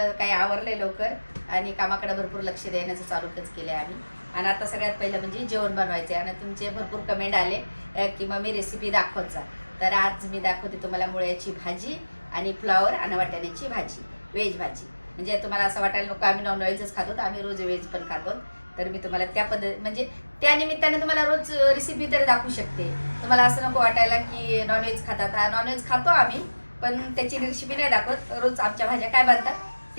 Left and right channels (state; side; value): inverted; both; correlation -1.00